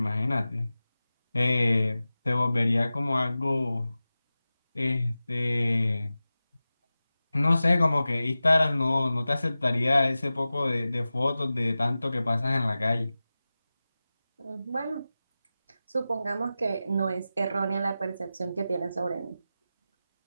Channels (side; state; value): both; inverted; correlation -0.95